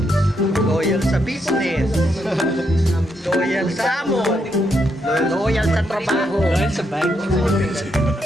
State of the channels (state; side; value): normal; both; correlation 0.79